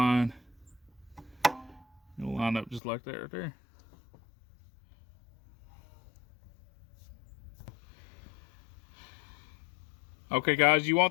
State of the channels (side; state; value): right; drops out; at 2.8 s